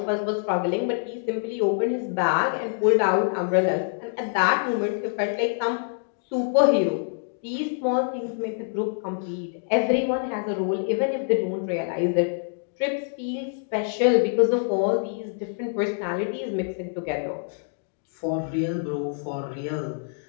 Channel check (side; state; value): right; silent; digital silence